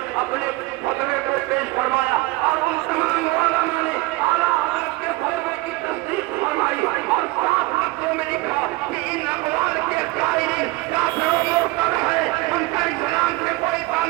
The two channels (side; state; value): left; quieter; 21.4 dB